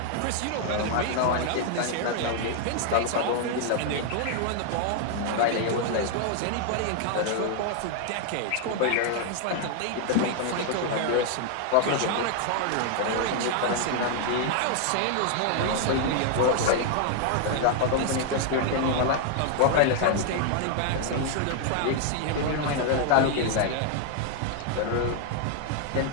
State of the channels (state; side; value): different; both; correlation 0.00